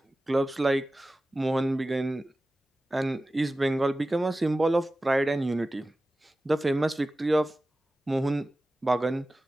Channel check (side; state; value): both; normal; correlation 0.96